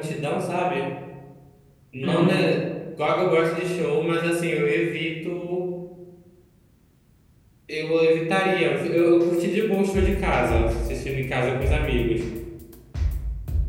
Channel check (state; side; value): identical; both; correlation 1.00